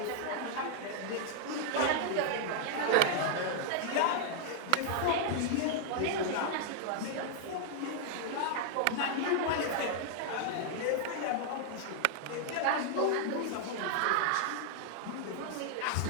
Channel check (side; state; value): both; different; correlation 0.00